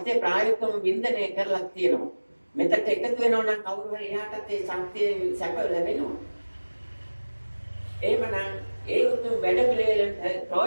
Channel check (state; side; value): inverted; both; correlation -1.00